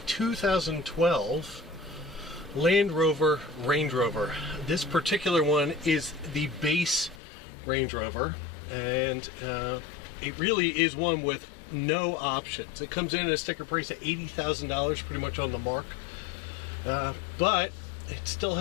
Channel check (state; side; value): drops out; right; at 7.2 s